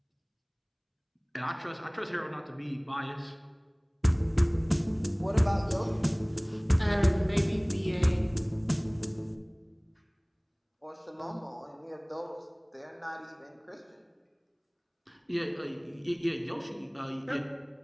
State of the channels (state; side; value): identical; both; correlation 1.00